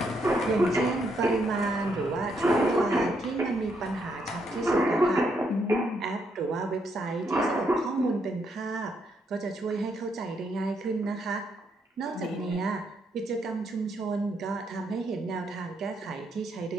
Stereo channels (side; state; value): both; normal; correlation 0.76